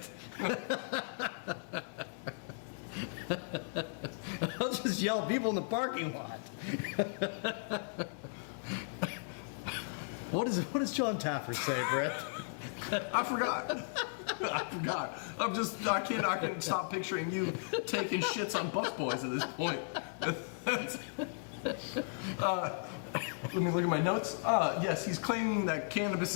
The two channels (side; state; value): right; silent; digital silence